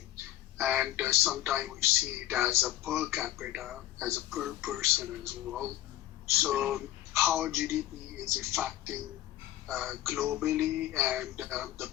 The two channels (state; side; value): quieter; right; 13.4 dB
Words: And sometimes we see it as a per capita, as a per person as well. So how GDP is affecting globally, and the